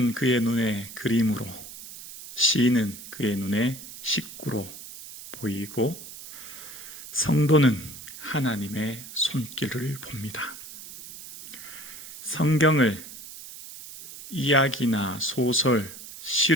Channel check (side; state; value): right; noise; hiss, 14 dB below the sound